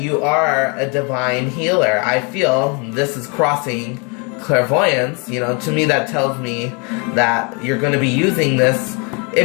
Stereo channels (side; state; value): right; quieter; 32.9 dB